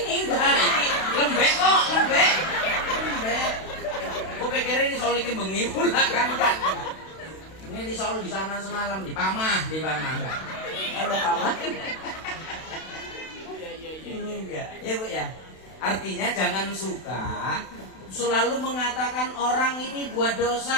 enggak. Ini lembek kok, lembek. Lembek. Gue pikir ini risol ini bengi pula kan, enggak. Ini risol di sana semalam, di Pamah enggak. Kalau Pamah enggak, ya Bu ya. Artinya jangan suka selalu mengatakan orang ini buat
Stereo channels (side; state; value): right; late; 32 ms